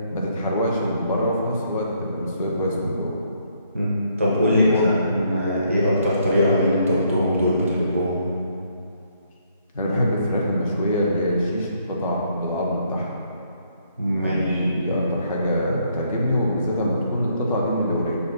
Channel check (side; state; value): both; inverted; correlation -0.70